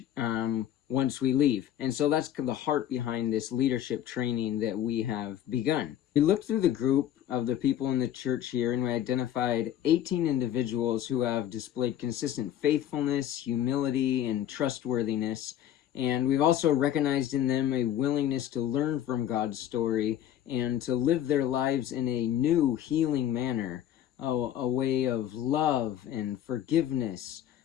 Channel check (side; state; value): right; quieter; 11.1 dB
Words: once we leave. And so that's the heart behind this leadership training that we have begun. We looked through the group of the people in the church here and we identified 18 individuals who have displayed consistent faithfulness, humility, and trustworthiness. And we've also recognized in them a willingness to learn from God's story and to live their lives in a new, healing manner, a way of love and forgiveness,